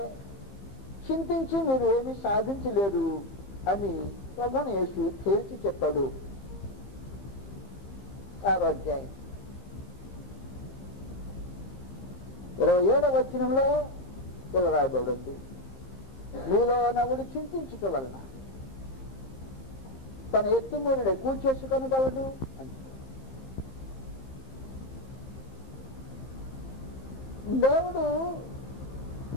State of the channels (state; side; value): late; right; 15 ms